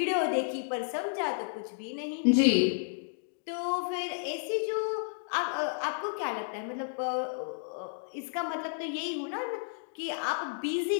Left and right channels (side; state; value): right; silent; digital silence